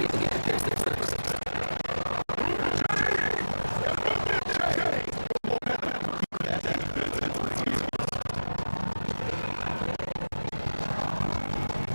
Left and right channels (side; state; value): both; inverted; correlation -1.00